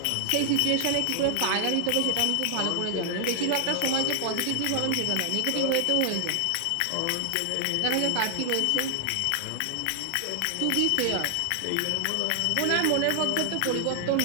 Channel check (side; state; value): both; different; correlation 0.00